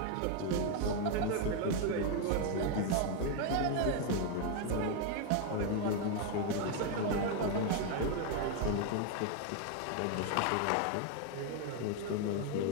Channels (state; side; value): different; both; correlation 0.01